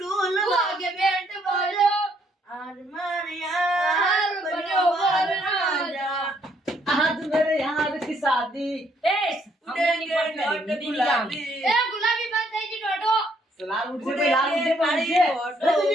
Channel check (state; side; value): normal; both; correlation 0.69